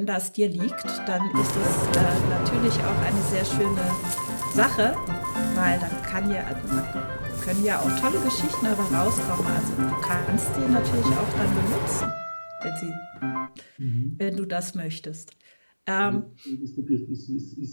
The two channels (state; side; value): inverted; both; correlation -1.00